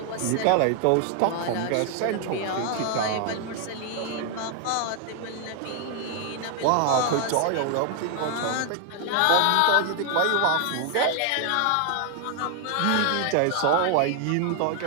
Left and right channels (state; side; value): different; both; correlation 0.00